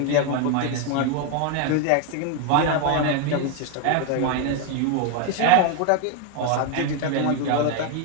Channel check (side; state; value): both; different; correlation 0.01